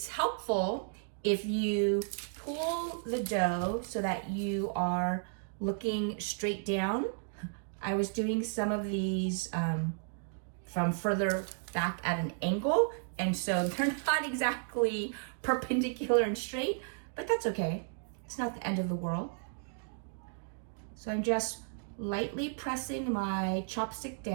helpful if you pull the dough so that you are looking straight down. I was doing some of these from further back at an angle, and so they're not exactly perpendicular and straight, but that's okay. It's not the end of the world. So I'm just lightly pressing my chopstick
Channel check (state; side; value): silent; left; 55 dB below the other